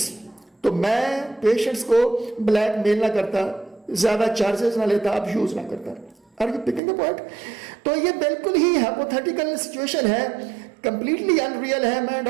तो मैं पेशेंट्स को ब्लैकमेल ना करता, ज्यादा चार्जेस ना लेता, अब्यूज ना करता। Are you picking the point? तो ये बिल्कुल ही हाइपोथेटिकल सिचुएशन है, कंप्लीटली अनरियल है, मैं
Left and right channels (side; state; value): left; drops out; at 6.8 s